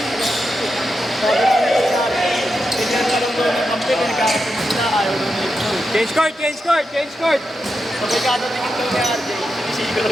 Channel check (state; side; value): normal; both; correlation 0.87